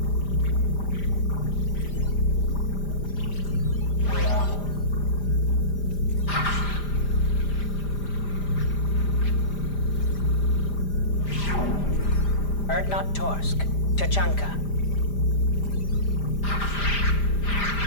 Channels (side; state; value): right; late; 5.0 ms